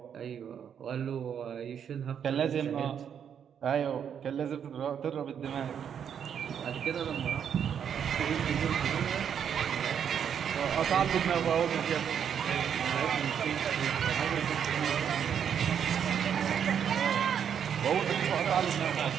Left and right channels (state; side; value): quieter; left; 8.2 dB